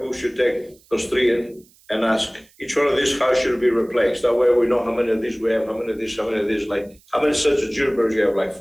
we should take those three in and ask each one of these, how should it be replaced? That way we know how many of these we have, how many of these, like, how many sets of junipers you have, like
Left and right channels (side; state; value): right; noise; hiss, 30 dB below the sound